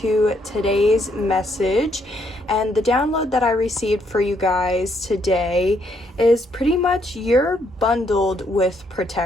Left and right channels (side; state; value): both; normal; correlation 0.72